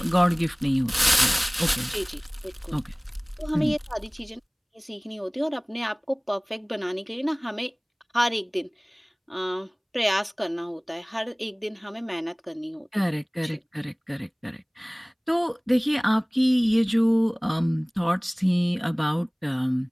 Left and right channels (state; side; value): identical; both; correlation 1.00